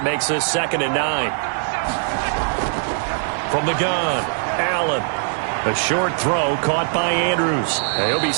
makes this 2nd and 9. From the gun, Allen. A short throw caught by Andrews. He'll be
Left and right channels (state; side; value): silent; left; digital silence